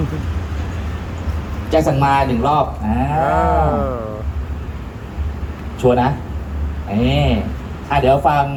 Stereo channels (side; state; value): both; identical; correlation 1.00